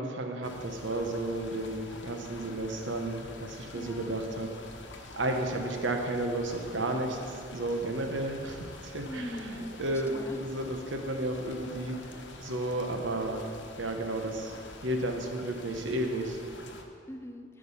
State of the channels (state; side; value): normal; both; correlation 0.25